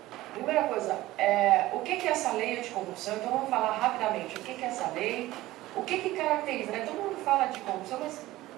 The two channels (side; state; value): left; quieter; 17.0 dB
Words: primeira coisa, o que é essa lei anticorrupção? Então vamos falar rapidamente o que é essa lei, o que caracteriza, né? Todo mundo fala de corrupção, mas